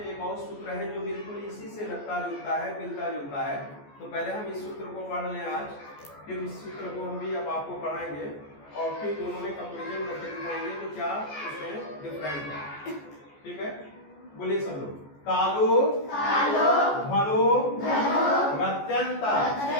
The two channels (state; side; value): late; right; 14 ms